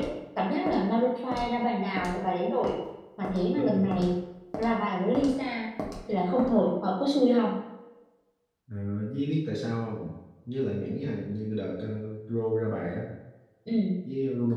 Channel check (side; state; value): both; identical; correlation 1.00